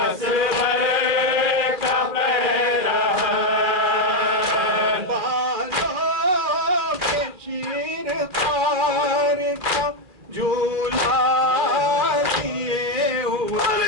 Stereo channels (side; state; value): left; late; 2.4 ms